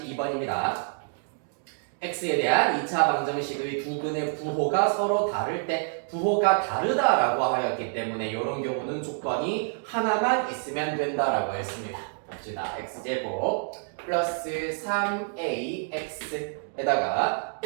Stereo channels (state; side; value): silent; left; 60 dB below the other